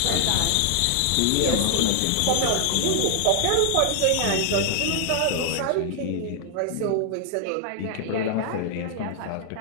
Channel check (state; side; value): different; both; correlation 0.00